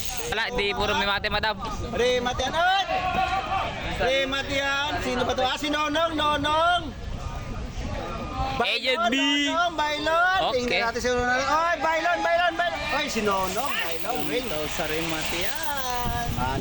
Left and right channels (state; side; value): identical; both; correlation 1.00